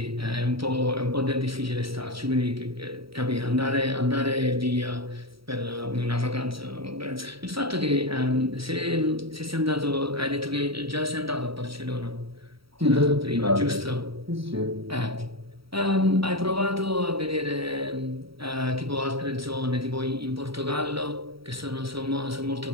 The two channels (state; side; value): late; left; 0.75 ms